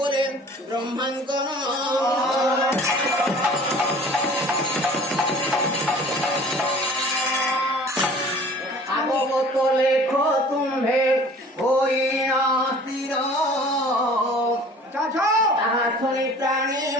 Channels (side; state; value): both; normal; correlation 0.48